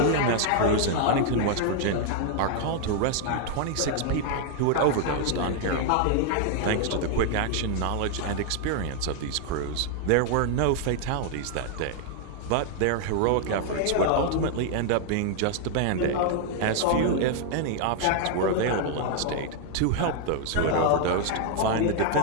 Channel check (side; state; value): both; different; correlation 0.00